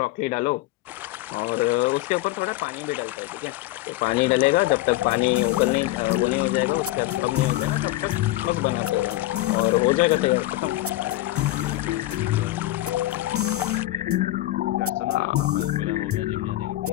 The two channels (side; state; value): right; quieter; 16.5 dB